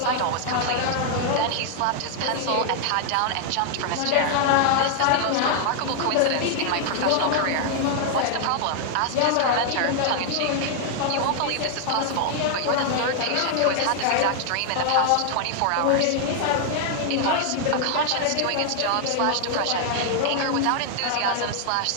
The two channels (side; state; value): both; different; correlation 0.00